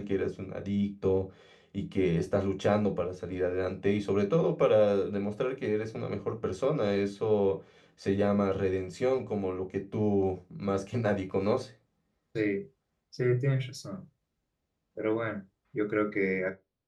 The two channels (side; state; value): both; identical; correlation 1.00